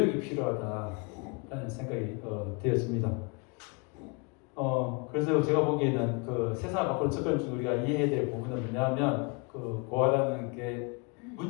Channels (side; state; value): right; quieter; 32.0 dB